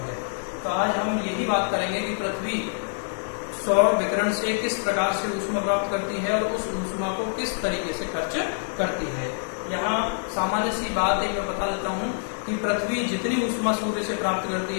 है। तो आज हम यही बात करेंगे कि पृथ्वी सौर विकिरण से किस प्रकार से ऊष्मा प्राप्त करती है और उस ऊष्मा को किस तरीके से खर्च करती है। यहाँ सामान्य सी बात एक मैं बता देता हूँ कि पृथ्वी जितनी ऊष्मा सूर्य से प्राप्त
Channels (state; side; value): silent; right; 61 dB below the other